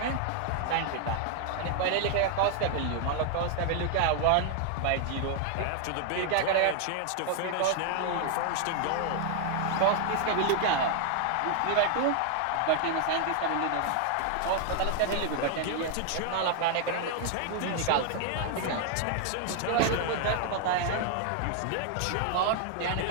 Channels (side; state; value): both; different; correlation 0.00